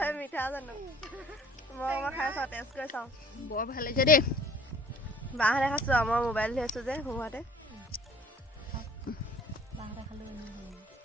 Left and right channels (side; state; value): both; normal; correlation 0.52